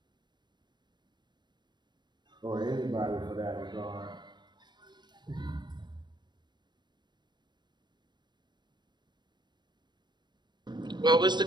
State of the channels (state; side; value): late; left; 0.22 ms